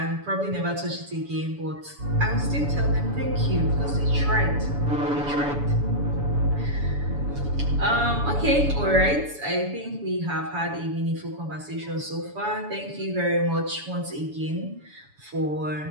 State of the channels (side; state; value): left; late; 7.0 ms